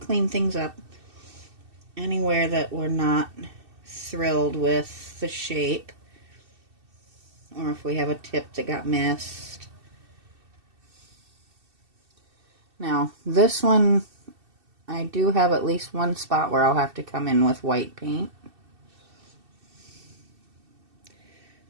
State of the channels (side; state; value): left; late; 2.7 ms